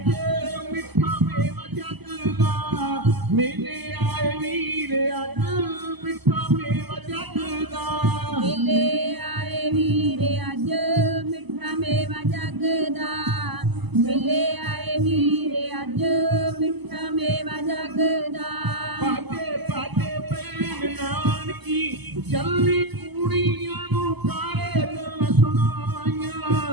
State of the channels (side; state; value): left; late; 0.99 ms